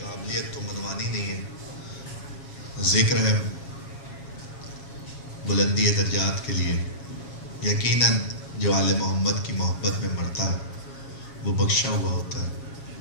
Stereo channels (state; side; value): late; right; 7.3 ms